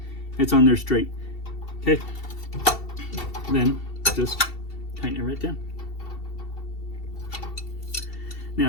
it's on there straight. Okay, then just tighten it right down.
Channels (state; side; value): late; right; 2.7 ms